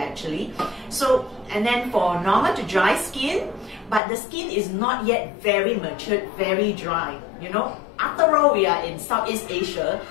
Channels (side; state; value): right; drops out; at 4.0 s